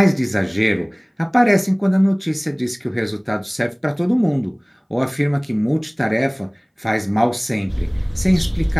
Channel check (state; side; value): identical; both; correlation 1.00